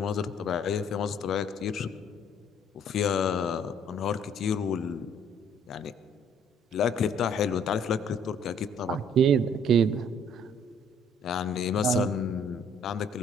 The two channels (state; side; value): normal; both; correlation 0.60